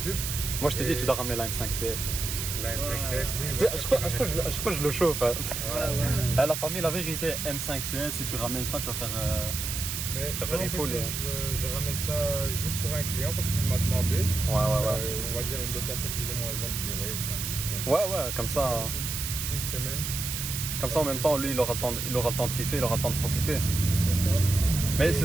Moi je t'ai dit, Et- tu dois ramener la M5 CS. La M5 CS, c'est une Tu sais, voiture je sais pas, qui va je sais pas, rester- je sais pas, je le chauffe. Hein. Ouais. La famille, la vérité, M5 CS, si tu ramènes ça, tu vas faire. Mais Tu vas tu vois, faire en fait, full, je ramène ça juste pour un client parce qu'il m'a demandé. Ouais. On va dire une location plus ou moins longue durée. Donc, Ouais, comme ça. Une semaine, Comme ça, en même temps, lui, il aura le temps de kiffer, il aura le temps de profiter. c'est ça. Mais Et- c'est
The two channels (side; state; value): right; noise; hiss, 4 dB below the sound